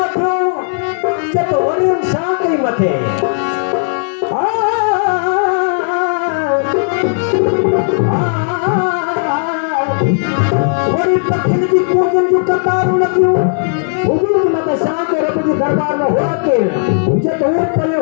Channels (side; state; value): right; silent; digital silence